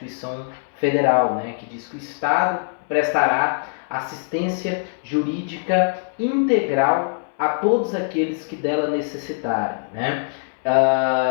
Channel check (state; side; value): silent; right; 62 dB below the other